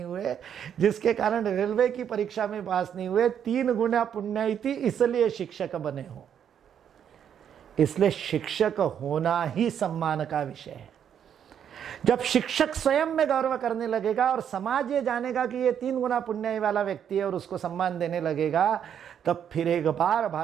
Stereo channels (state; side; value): quieter; left; 8.8 dB